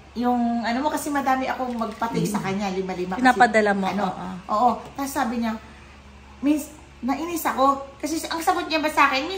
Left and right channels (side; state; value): both; identical; correlation 1.00